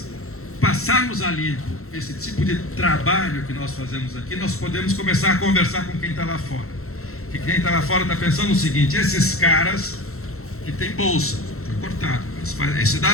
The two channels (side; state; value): right; late; 0.63 ms